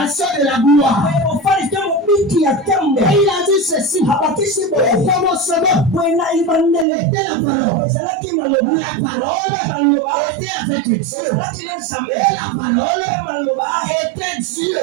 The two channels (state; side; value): drops out; left; at 6.9 s